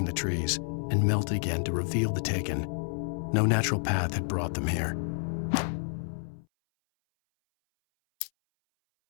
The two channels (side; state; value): right; silent; 58 dB below the other